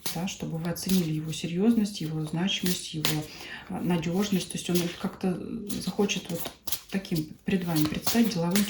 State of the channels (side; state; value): both; identical; correlation 1.00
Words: да, чтобы вы оценили его серьезность, его значимость, его надежность. То есть он как-то захочет вот таким пред вами предстать деловым